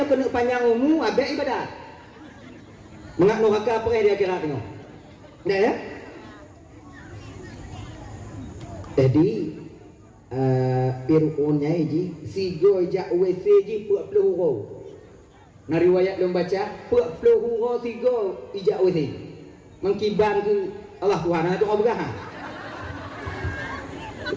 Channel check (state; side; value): identical; both; correlation 1.00